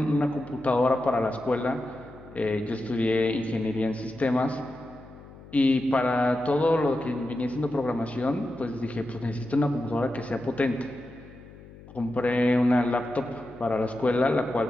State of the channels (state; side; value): noise; left; hum, 19 dB below the sound